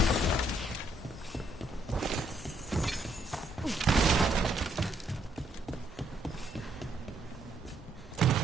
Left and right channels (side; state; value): both; normal; correlation 0.72